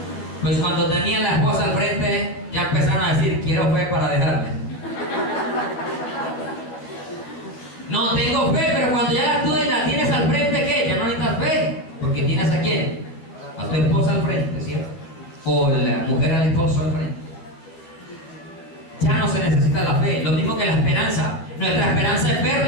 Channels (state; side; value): late; right; 12 ms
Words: Pues cuando tenían la esposa al frente, ya empezaron a decir, quiero fe para dejarme. No, tengo fe, pero cuando ya tú la tienes al frente, ¿qué? Ya no necesitas fe, porque tienes ¿a quién? A tu esposa al frente, ¿cierto? O la mujer al esposo al frente. Ya no se necesita la fe, lo mismo que la esperanza. Nuestra esperanza es